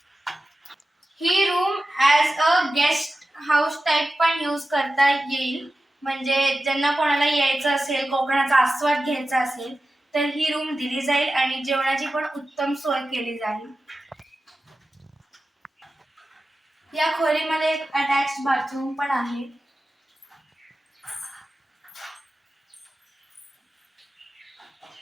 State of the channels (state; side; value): normal; both; correlation 0.94